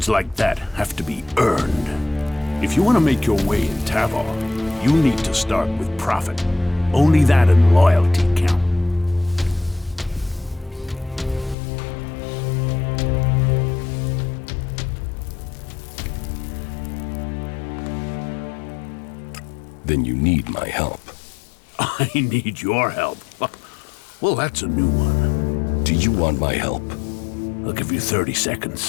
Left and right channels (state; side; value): drops out; right; at 11.6 s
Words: like that have to be earned. If you want to make your way in Tavar, you need to start with profit. Only that and loyalty count. Then you need my help. I need your help. Well, that's a new one. Do you want my help? I'll give you 30